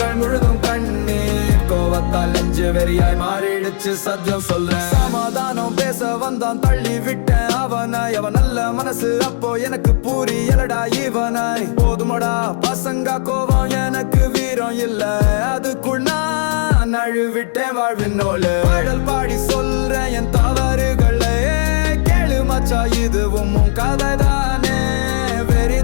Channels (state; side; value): silent; right; digital silence